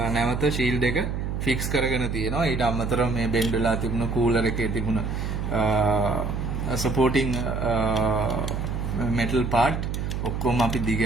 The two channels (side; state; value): right; noise; hum, 3 dB below the sound